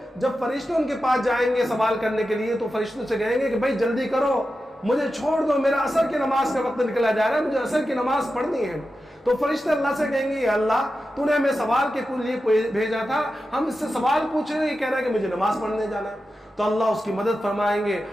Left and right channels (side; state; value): both; normal; correlation 0.91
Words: جب فرشتے ان کے پاس جائیں گے سوال کرنے کے لیے تو فرشتوں سے کہیں گے کہ بھائی جلدی کرو، مجھے چھوڑ دو، میرا عصر کی نماز کا وقت نکلا جا رہا ہے، مجھے عصر کی نماز پڑھنی ہے۔ تو فرشتے اللہ سے کہیں گے اللہ تو نے ہمیں سوال کے لیے بھیجا تھا، ہم اس سے سوال پوچھ رہے ہیں، یہ کہہ رہا ہے کہ مجھے نماز پڑھنے جانا ہے۔ تو اللہ اس کی مدد فرمائیں گے